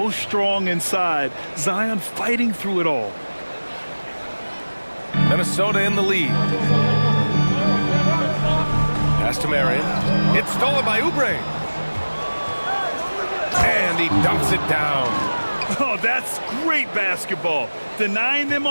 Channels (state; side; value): inverted; both; correlation -1.00